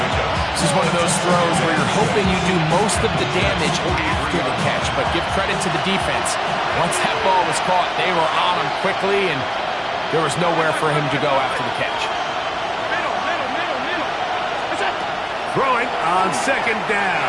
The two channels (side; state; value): both; identical; correlation 1.00